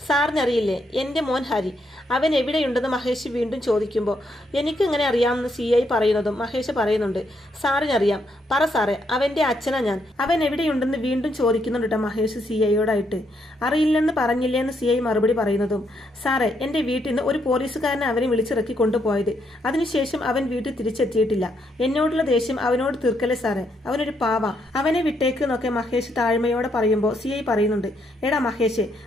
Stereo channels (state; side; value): normal; both; correlation 0.76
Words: സാറിനറിയില്ലേ എൻ്റെ മോൻ ഹരി, അവൻ എവിടെയുണ്ടെന്ന് മഹേഷ് വീണ്ടും ചോദിക്കുമ്പോൾ, എനിക്കെങ്ങനെ അറിയാമെന്ന് CI പറയുന്നതും മഹേഷ് പറയുന്നുണ്ട്, സാറിനറിയാം, പറ സാറേ, അവൻ്റെ അച്ഛനാ ഞാൻ. അവൻ എവിടെയുണ്ടെന്ന് വീണ്ടും ചോദിക്കുന്നുണ്ട് കേട്ടോ മഹേഷ് CIയോടായിട്ട്. അറിയില്ലെന്ന് പറഞ്ഞില്ലേ എന്ന് CI മറുപടി പറയുന്നതും, സാറേ, എൻ്റെ വീട്ടിൽ നിന്ന് ഒരു പോലീസുകാരനെ അവനെ വിളിച്ചിറക്കി കൊണ്ടുപോയത്. അതിനുശേഷം അതിനുശേഷം അവൻ വീട്ടിൽ തിരിച്ചെത്തിയിട്ടില്ല. എന്നോടുള്ള ദേഷ്യം അവനോട് തീർക്കല്ലേ സാറേ, അവനൊരു പാവ, അവനെ വിട്ടേക്ക് എന്നൊക്കെ മഹേഷ് താഴ്മയോടെ പറയുമ്പോൾ CI പറയുന്നുണ്ട്, എടാ മഹേഷ്,